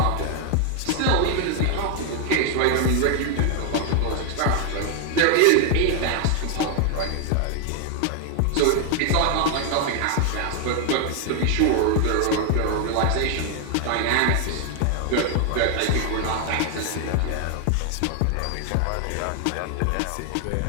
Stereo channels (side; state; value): both; different; correlation 0.00